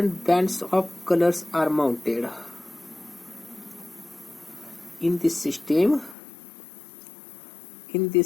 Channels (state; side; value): drops out; right; at 6.2 s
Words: bands of colors are mounted. In this system,